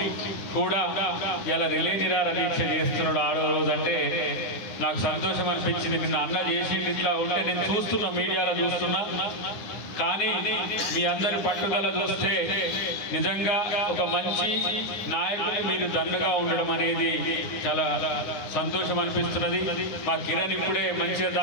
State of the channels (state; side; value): late; right; 10 ms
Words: కూడా ఇలా రిలే నిరాహార దీక్ష చేస్తున్నాడు. ఆడో రోజు అంటే నాకు సంతోషం అనిపించింది. నిన్న అన్న చేసింది ఇట్లా ఉంటే నేను చూస్తున్నా, మీడియాలో చూస్తున్నా. కానీ మీ అందరి పట్టుదల చూస్తే నిజంగా ఒక మంచి నాయకుని మీరు దన్నుగా ఉండడం అనేది చాలా సంతోషం అనిపిస్తున్నది. మా కిరణ్ ఇప్పుడే మంచిగా